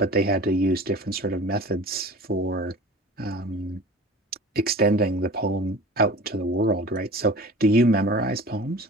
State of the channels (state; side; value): normal; both; correlation 0.39